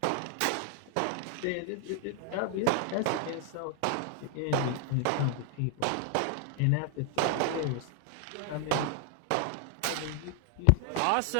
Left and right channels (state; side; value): different; both; correlation 0.00